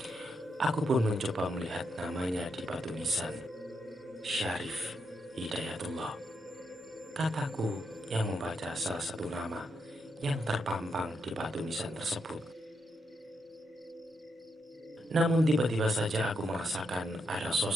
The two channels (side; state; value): both; normal; correlation 0.81